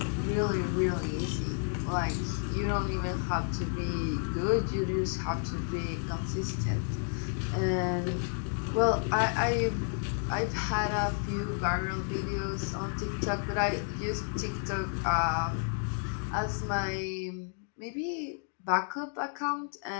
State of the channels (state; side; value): silent; right; 57 dB below the other